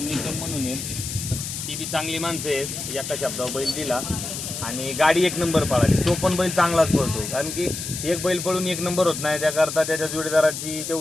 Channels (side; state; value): left; noise; hiss, 6 dB below the sound